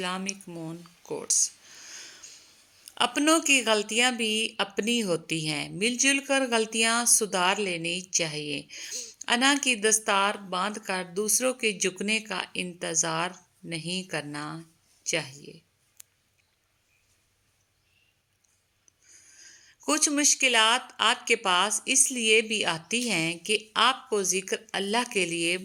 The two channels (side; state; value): both; identical; correlation 1.00